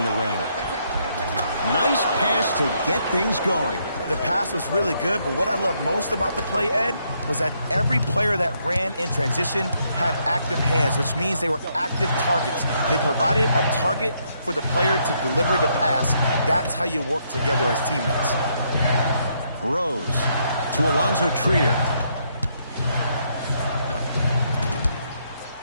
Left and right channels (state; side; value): inverted; both; correlation -0.74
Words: the rim. Nice pass to get things going. The pass was really good, but what I love most about the play, Ed, was that every player that ran in transition had active hands, which means they were active targets. They provided a target for the player to deliver the pass. That's how you work together as teammates. Rose to Alonzo Trier.